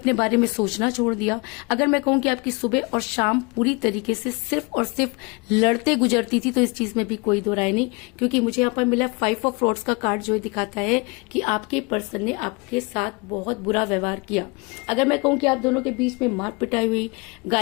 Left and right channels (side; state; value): right; quieter; 28.7 dB